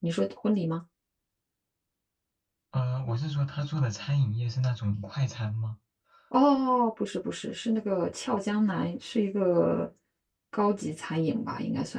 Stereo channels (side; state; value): both; identical; correlation 1.00